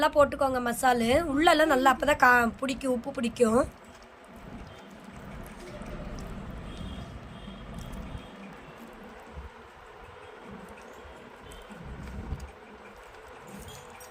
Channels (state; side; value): identical; both; correlation 1.00